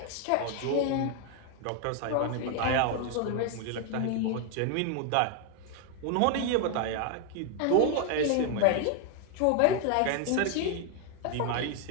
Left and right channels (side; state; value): both; different; correlation 0.01